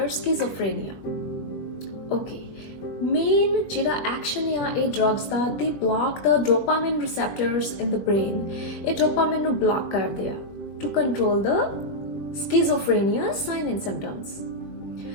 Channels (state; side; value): late; right; 20 ms